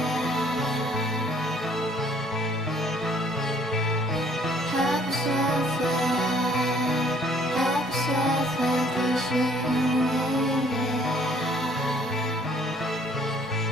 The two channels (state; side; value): normal; both; correlation 0.59